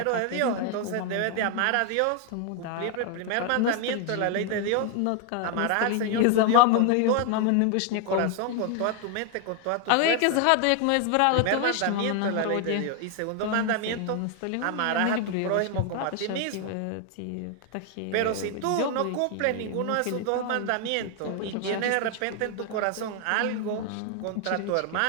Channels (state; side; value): different; both; correlation 0.00